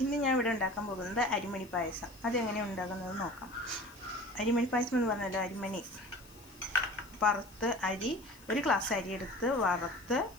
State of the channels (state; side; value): noise; left; hiss, 24 dB below the sound